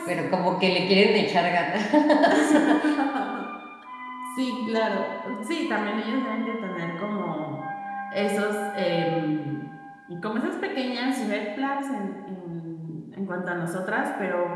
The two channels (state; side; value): identical; both; correlation 1.00